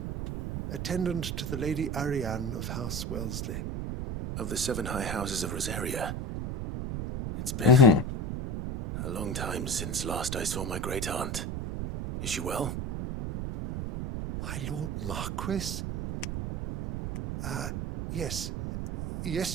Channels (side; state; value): right; noise; rumble, 3 dB below the sound